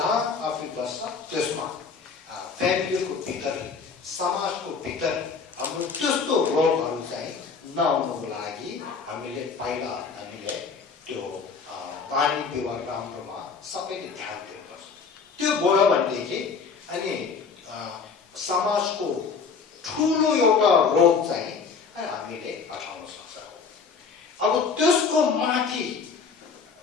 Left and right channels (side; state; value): right; quieter; 5.3 dB